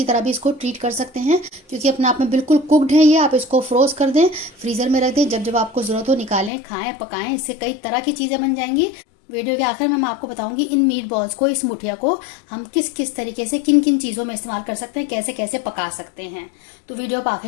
तरह भी इसको ट्रीट कर सकते हैं, क्योंकि अपने आप में बिल्कुल कुकड है ये। आप इसको फ्रोज कर दें, फ्रीज़र में रख दें, जब जब आपको ज़रूरत हो निकालें, खाएं, पकाएं। इससे कई तरह की चीज़ें बन जाएंगी। वीडियो के आखिर में मैं आपको बताऊंगी इन मीट बॉल्स को, इस मुठिया को हम किस किस तरीके से, किन किन चीज़ों में इस्तेमाल कर सकते हैं, कैसे कैसे पका सकते हैं। तो वीडियो पर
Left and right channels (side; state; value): right; drops out; at 6.5 s